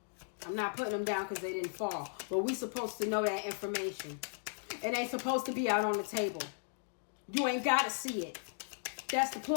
I'm not putting them down because they didn't fall. But we supposed to know that information. It ain't supposed to be out on the table. You ain't got to see it. That's the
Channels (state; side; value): silent; right; digital silence